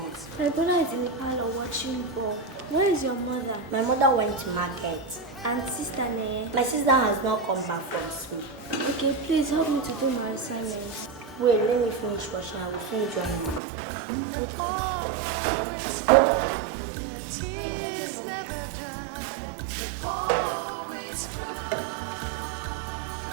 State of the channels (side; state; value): left; drops out; at 13.6 s